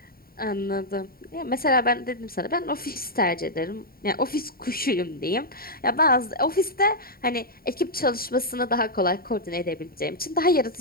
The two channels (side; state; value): right; late; 0.43 ms